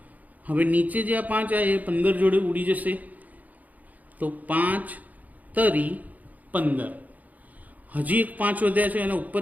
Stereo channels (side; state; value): left; late; 0.078 ms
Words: હવે નીચે જે આ 5 આવે એ 15 જોડે ઉડી જશે, તો 5 તરી 15। હજી એક 5 વધ્યા છે, એના ઉપર